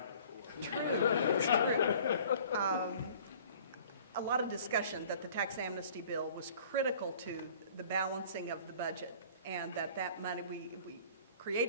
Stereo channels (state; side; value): inverted; both; correlation -0.49